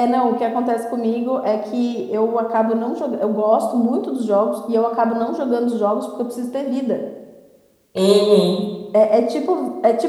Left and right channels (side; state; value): both; identical; correlation 1.00